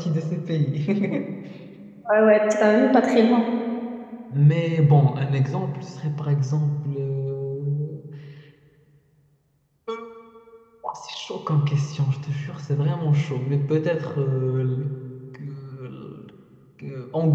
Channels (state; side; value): identical; both; correlation 1.00